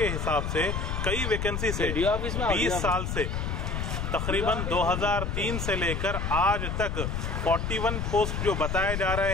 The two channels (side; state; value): left; noise; rumble, 2 dB below the sound